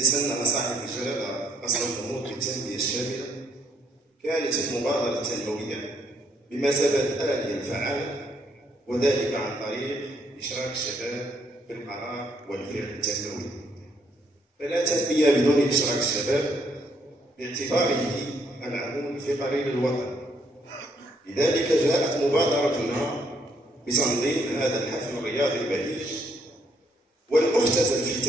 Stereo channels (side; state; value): both; normal; correlation 0.71